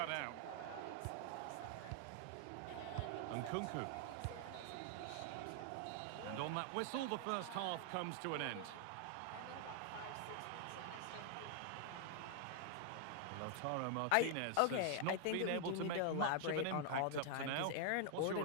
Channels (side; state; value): both; different; correlation 0.00